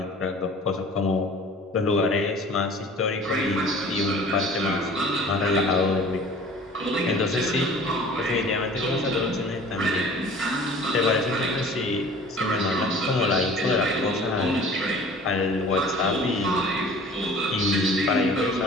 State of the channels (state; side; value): normal; both; correlation 0.46